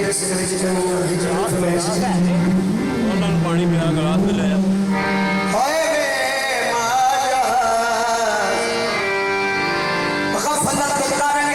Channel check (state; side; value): identical; both; correlation 1.00